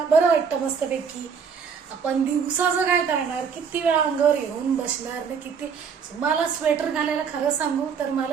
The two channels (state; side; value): quieter; left; 6.4 dB